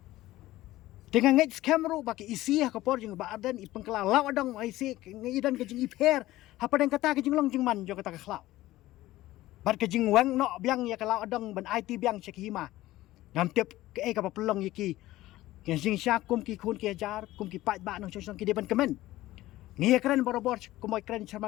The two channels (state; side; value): quieter; right; 16.4 dB